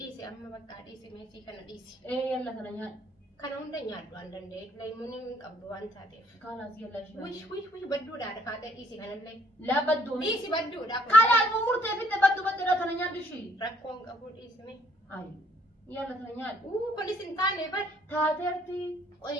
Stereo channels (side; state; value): both; normal; correlation 0.63